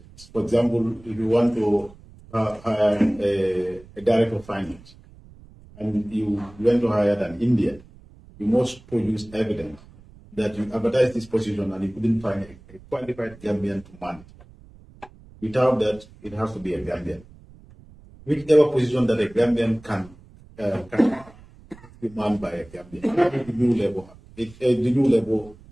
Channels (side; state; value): right; noise; rumble, 23 dB below the sound